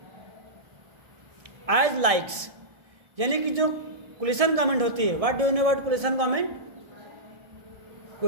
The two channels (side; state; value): left; late; 1.6 ms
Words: as likes. यानी कि जो coalition government होती है, what do you know about coalition government?